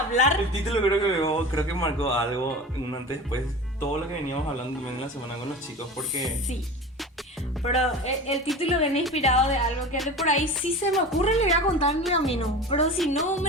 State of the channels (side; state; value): both; normal; correlation 0.33